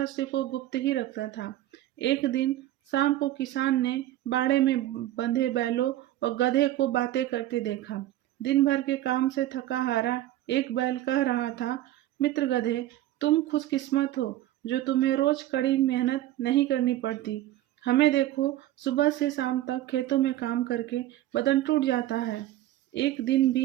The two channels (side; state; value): left; quieter; 14.2 dB